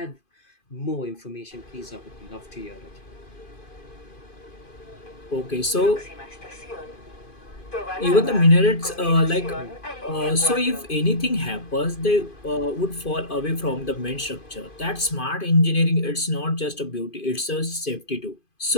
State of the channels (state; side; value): late; right; 2.5 ms